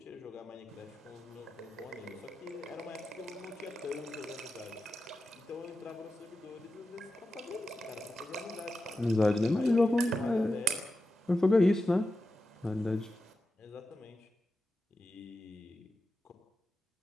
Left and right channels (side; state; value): both; normal; correlation 0.90